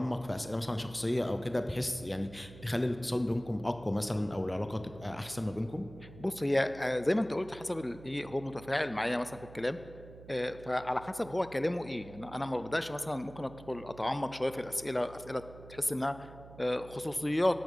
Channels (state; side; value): noise; right; hum, 17 dB below the sound